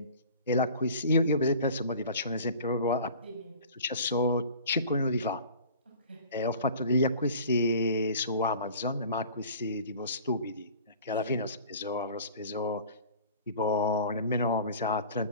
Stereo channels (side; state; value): both; inverted; correlation -0.44